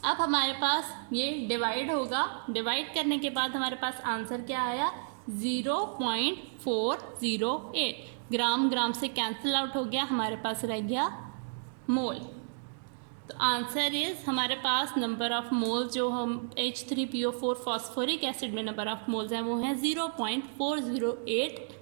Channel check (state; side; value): silent; left; digital silence